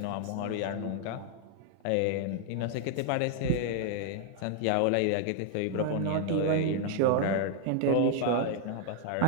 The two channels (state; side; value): different; both; correlation 0.00